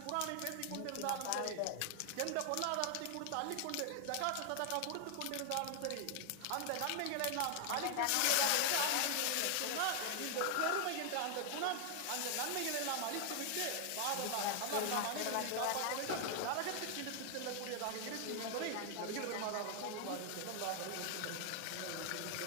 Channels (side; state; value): both; different; correlation 0.00